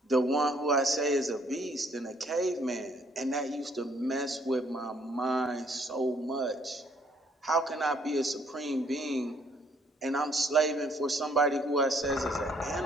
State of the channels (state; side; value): normal; both; correlation 0.65